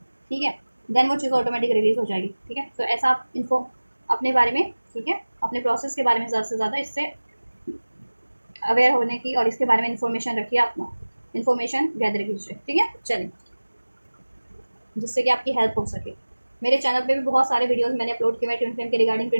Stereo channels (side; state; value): both; inverted; correlation -1.00